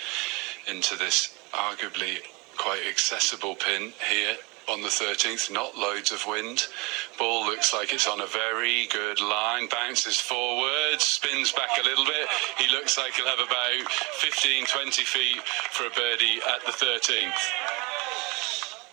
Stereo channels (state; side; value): quieter; left; 27.1 dB